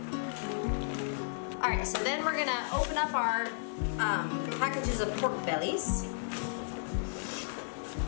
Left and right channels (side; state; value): right; silent; digital silence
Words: Alright, so then we're gonna open up our packages of pork bellies.